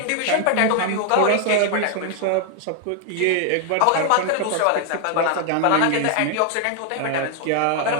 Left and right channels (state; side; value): different; both; correlation 0.00